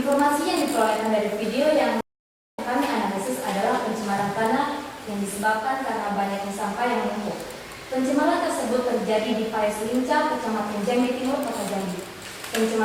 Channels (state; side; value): identical; both; correlation 1.00